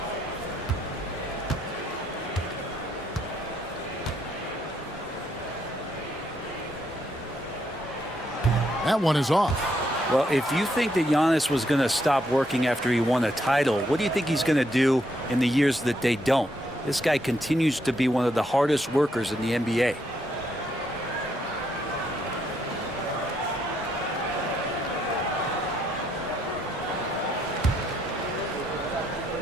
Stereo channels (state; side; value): normal; both; correlation 0.75